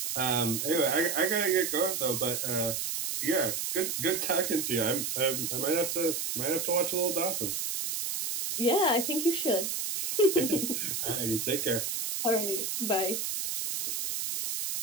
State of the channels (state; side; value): noise; right; hiss, 2 dB below the sound